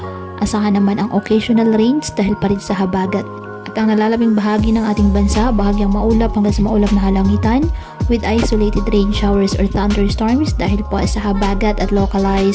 asahan naman ang occasional rains dahil pa rin sa habagat. At ang nalalabing bahagi ng ating bansa, bahagyang maulap hanggang sa maulap na halangitan with isolated rain showers or thunderstorms dahil po sa habagat at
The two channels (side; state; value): both; identical; correlation 1.00